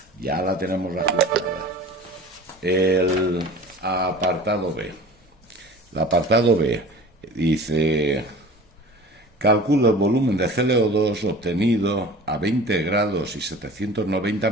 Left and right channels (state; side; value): normal; both; correlation 0.40